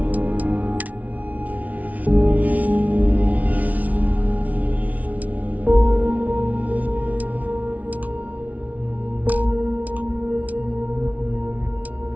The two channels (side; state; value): left; late; 0.071 ms